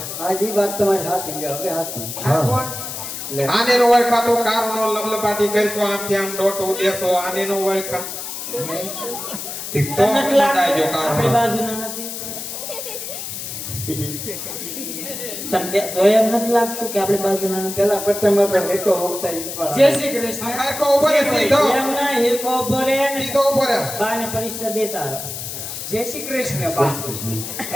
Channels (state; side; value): noise; left; hiss, 7 dB below the sound